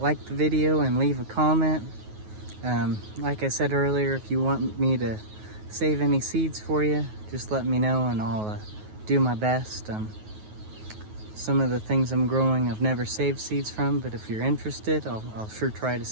like the video and leave a comment. Like I said earlier, if you want me to save any seeds for you, just let me know and I'll do my best. Some of the things I'm growing I've never saved seeds from, but if you're interested, I'll sure try to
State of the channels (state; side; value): late; left; 9.4 ms